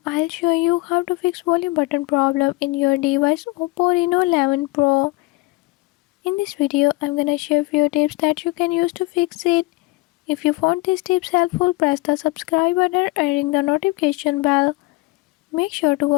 I'll show you how to fix volume button problem in your device Oppo Reno 11 Pro. In this video I'm gonna share few tips that you can use to fix it. If you found these tips helpful, press the subscribe button and ring the notification bell. Make sure to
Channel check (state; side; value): quieter; right; 22.0 dB